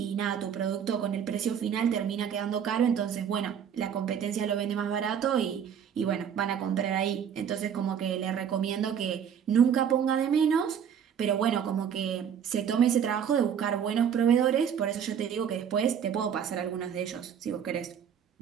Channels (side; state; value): left; quieter; 8.2 dB